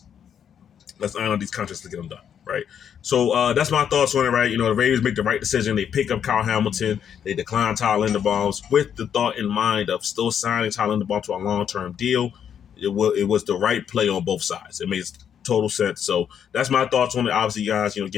Let's iron out these contracts to get them done, right? So that's my thoughts on it, right? The Ravens make the right decision. They pick up Kyle Hamilton. They decline Tyler Linderbaum with the thought in mind of still signing Tyler Linderbaum to a long-term deal. It was the right play on both sides. It makes total sense. So that's my thoughts on it. Obviously, guys,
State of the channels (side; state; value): right; quieter; 8.5 dB